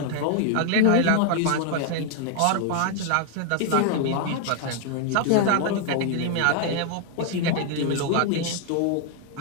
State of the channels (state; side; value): different; both; correlation 0.00